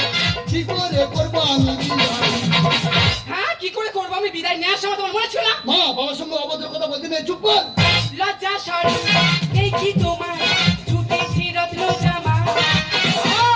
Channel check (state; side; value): identical; both; correlation 1.00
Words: কি করে করবো আমি বিদায়? হ্যাঁ কি করে করবো আমি বিদায় নেওয়ার সময় তোমার মনে ছিল না মা বাবার সঙ্গে অভদ্র কথা বলতে নেই, চুপ কর। লজ্জা সরম এই কি তোমার ছুটেছি রত্ন জামা